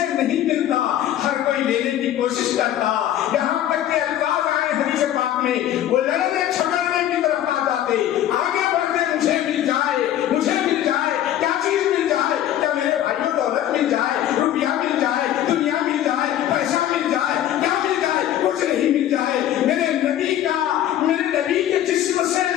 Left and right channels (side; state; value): right; quieter; 11.9 dB